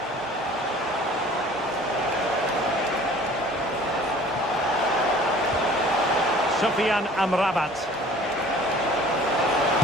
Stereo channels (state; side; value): normal; both; correlation 0.49